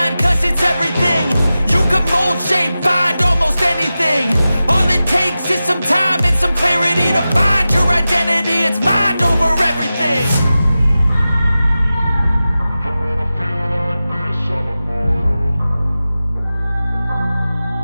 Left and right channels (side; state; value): both; inverted; correlation -0.94